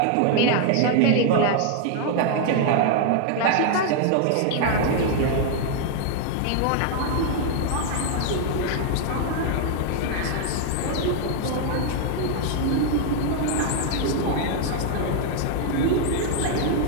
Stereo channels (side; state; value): both; different; correlation 0.00